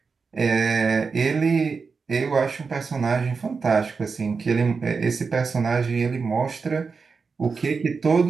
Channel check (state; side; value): quieter; left; 5.0 dB